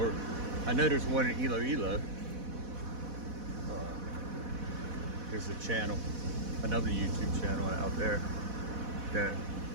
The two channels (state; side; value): late; left; 4.1 ms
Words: I know there's one in Iloilo. There's a channel, another YouTube channel out there that,